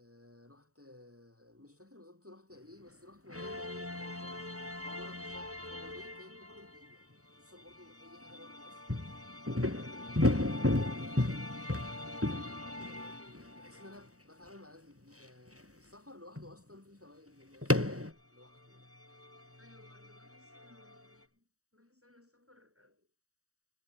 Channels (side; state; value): left; late; 0.65 ms